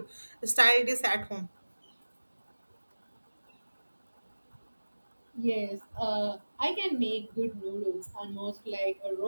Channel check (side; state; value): both; inverted; correlation -1.00